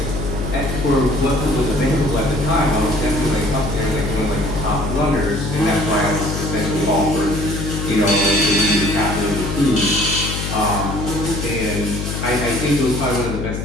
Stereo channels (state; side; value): noise; left; hum, 4 dB below the sound